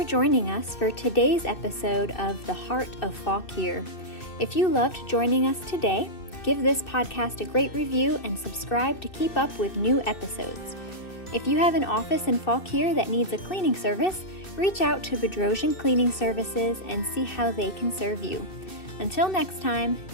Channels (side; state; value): right; late; 2.6 ms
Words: joining us for today's episode of The Heart of Fauquier. If you loved joining us today, give this podcast a great review and subscribe to keep up with new episodes. If you have an office in Fauquier that needs a cleaning service, reach out to Bedrosian Cleaning Services and see how they can serve you. Until next time,